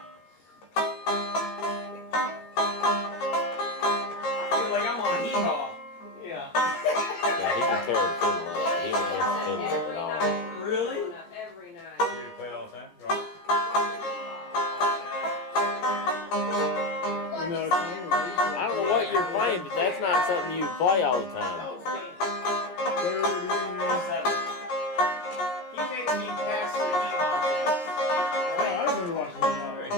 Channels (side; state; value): right; late; 16 ms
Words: But that's not something you play all the time. He makes me pass the heat on this. I remember watching him.